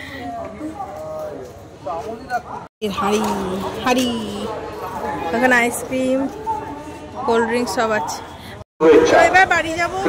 হাড়ি হাড়ি ওখানে আইসক্রিম, কোল্ড ড্রিঙ্কস সব আছে। শুভেচ্ছা, এবার বাড়ি যাবো,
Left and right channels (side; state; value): both; identical; correlation 1.00